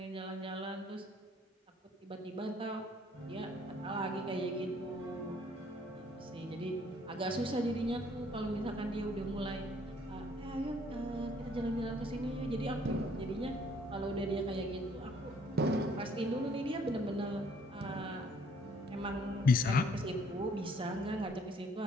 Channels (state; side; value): normal; both; correlation 0.62